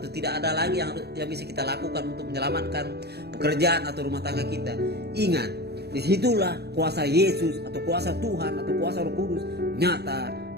tidak ada lagi yang bisa kita lakukan untuk menyelamatkan pekerjaan atau rumah tangga kita. Ingat, disitulah kuasa Yesus atau kuasa Tuhan atau kuasa Roh Kudus nyata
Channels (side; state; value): left; late; 0.48 ms